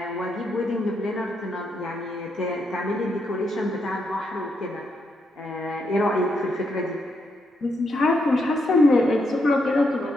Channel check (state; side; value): normal; both; correlation 0.79